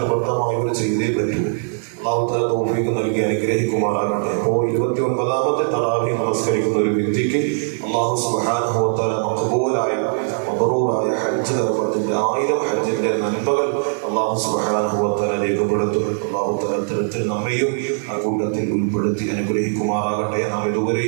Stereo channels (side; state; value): left; silent; digital silence